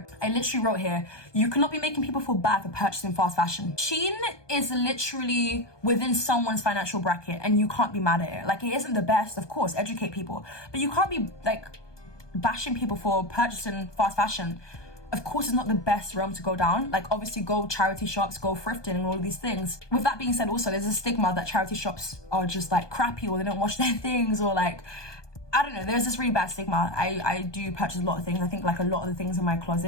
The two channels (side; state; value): right; late; 1.2 ms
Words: I literally wrote here, you cannot be making people feel bad for purchasing fast fashion. Shein is literally within someone's financial bracket and you can't be mad at it. Like, it isn't the best, of course, educate people. But you can't be like bashing people for purchasing fast fashion. Of course, it's not the best realm to go down. Like, obviously, go charity shops, go thrifting and all of these things. With that being said, also, there's a stigma that charity shops are just like crappy or they don't wash their things or like, I don't know, there's this really bad stigma. I do purchase a lot of things. I think like a lot of the things in my